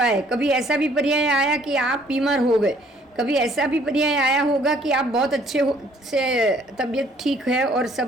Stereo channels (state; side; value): normal; both; correlation 0.60